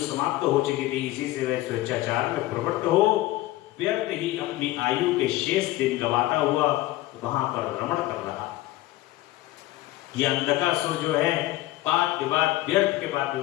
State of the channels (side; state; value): right; quieter; 16.9 dB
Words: हो चुकी थी। इसी से वह स्वेच्छाचार में प्रवृत्त हो व्यर्थ ही अपनी आयु के शेष दिन गवाता हुआ वहां पर रमण कर रहा। यह अंधकासुर जो है वाद विवाद व्यर्थ के बाद